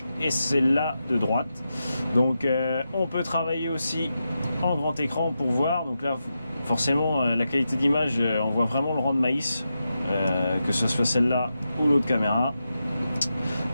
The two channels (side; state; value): both; inverted; correlation -0.88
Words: et celle-là de droite. Donc on peut travailler aussi en grand écran pour voir. Donc là, forcément, la qualité d'image, on voit vraiment le rang de maïs, que ce soit celle-là ou l'autre caméra.